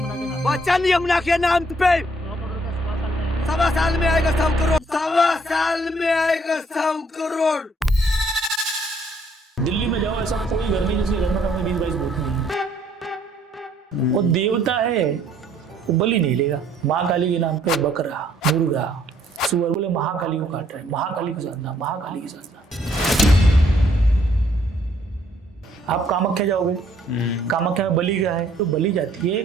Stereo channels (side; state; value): both; normal; correlation 0.65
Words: वचन यमुना के नाम पे 1.25 साल में आएगा 100 करोड़। 1.25 साल में आएगा 100 करोड़। दिल्ली में जाओ, ऐसा कोई घर नहीं जिसके घर में कम 20-22 भूत नहीं है। वो देवता है, वो बलि नहीं लेगा। माँ काली के नाम पे बकरा, मुर्गा, सुअर, बोले महाकाली को काट रहे हैं, महाकाली की साधना, महाकाली की साधना। आप कामाख्या जाओगे, कामाख्या में बलि क्या है? तो बलि जाती है,